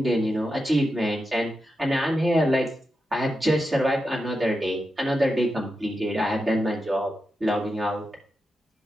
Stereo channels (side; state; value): both; normal; correlation 0.88